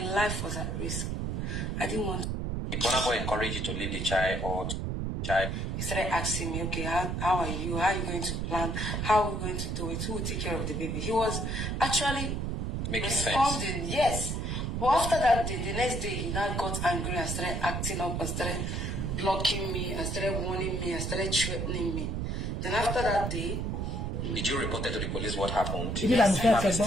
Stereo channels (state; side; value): noise; right; rumble, 1 dB below the sound